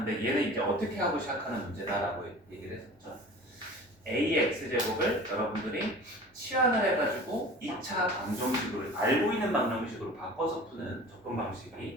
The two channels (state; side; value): normal; both; correlation 0.41